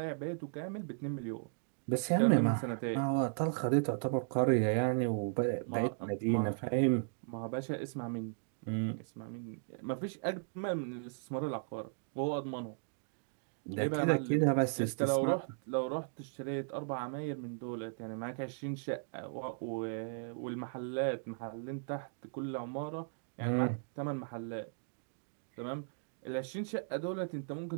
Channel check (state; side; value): silent; left; digital silence